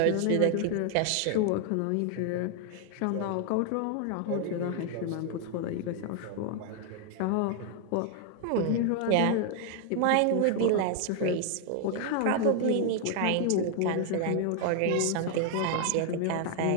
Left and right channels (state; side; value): different; both; correlation 0.00